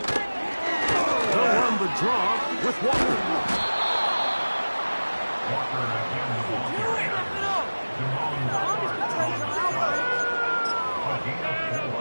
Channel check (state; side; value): inverted; both; correlation -1.00